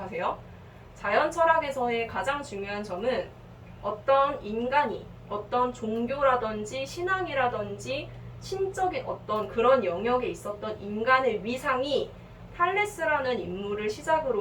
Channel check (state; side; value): identical; both; correlation 1.00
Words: 자연 철학에서의 가장 중요한 점은 어떤 인간이 어떤 종교라든지 신앙이라든지 신적인 어떤 그런 영역에 있었던 인간의 위상이 탈레스라는 인물을